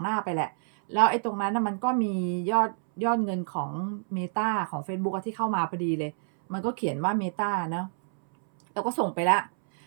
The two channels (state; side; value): silent; left; 60 dB below the other